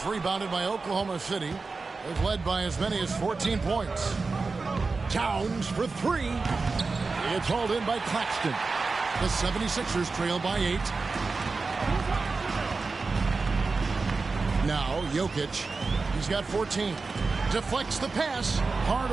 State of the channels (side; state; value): left; quieter; 4.1 dB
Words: rebounded by Oklahoma City. They've led by as many as 14 points. Towns for 3. It's hauled in by Claxton. The 76ers trail by 8. Now Jokic. He's got 14. Deflects the pass.